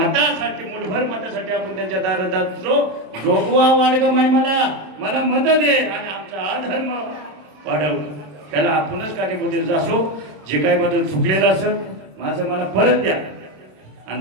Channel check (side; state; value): left; late; 26 ms